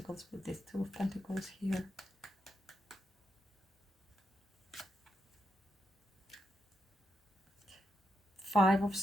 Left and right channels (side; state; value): both; normal; correlation 0.83